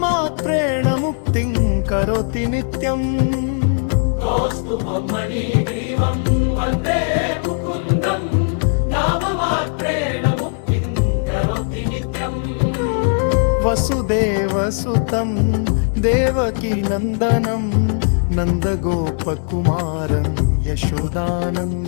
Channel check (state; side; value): silent; right; 58 dB below the other